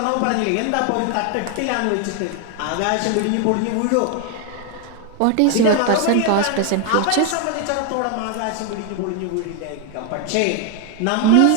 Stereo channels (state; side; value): different; both; correlation 0.01